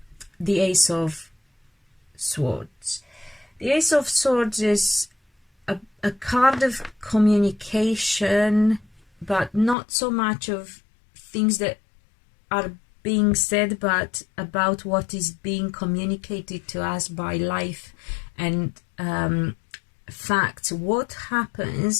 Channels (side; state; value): right; drops out; at 9.8 s